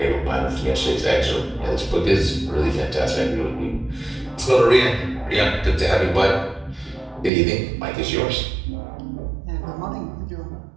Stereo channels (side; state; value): left; drops out; at 7.3 s